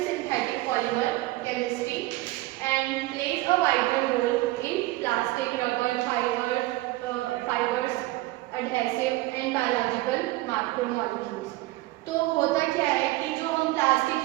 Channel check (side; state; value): left; quieter; 19.0 dB